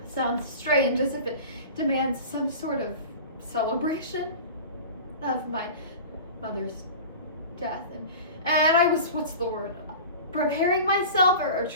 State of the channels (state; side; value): inverted; both; correlation -0.36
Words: sounds strange, as if it demands some sort of celebration of my mother's death. And I was, preparing myself or